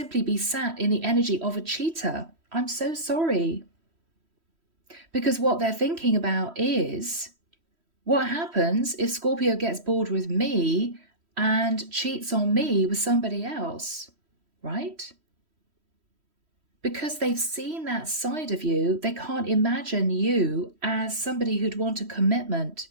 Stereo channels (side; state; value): left; late; 3.1 ms